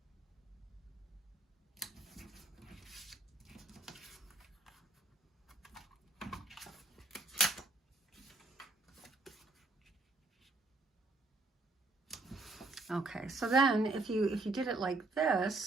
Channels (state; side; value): quieter; left; 3.3 dB